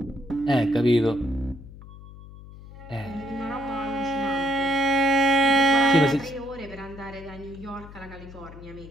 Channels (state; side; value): noise; left; hum, 17 dB below the sound